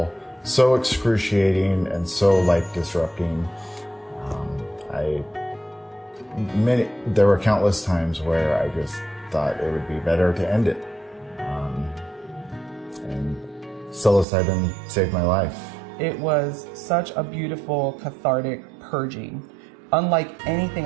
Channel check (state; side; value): drops out; left; at 14.2 s